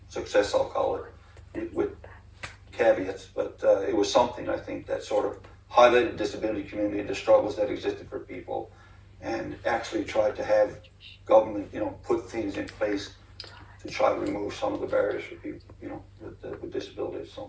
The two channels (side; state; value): both; identical; correlation 1.00